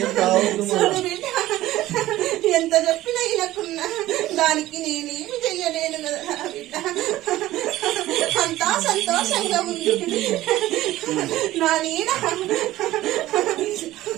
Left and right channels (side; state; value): left; quieter; 15.7 dB